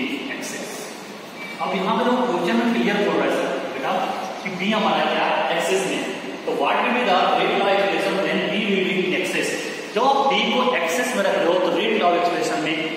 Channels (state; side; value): identical; both; correlation 1.00